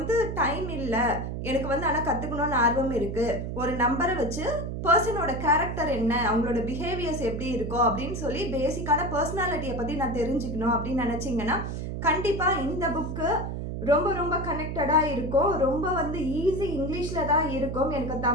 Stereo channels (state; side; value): noise; right; hum, 5 dB below the sound